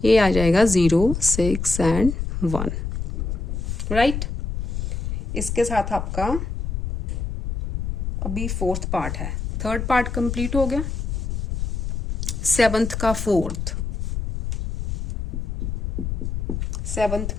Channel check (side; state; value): left; noise; rumble, 3 dB below the sound